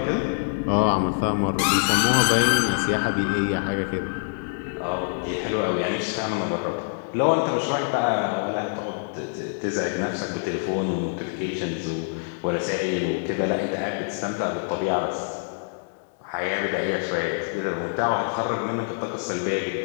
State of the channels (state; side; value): silent; right; digital silence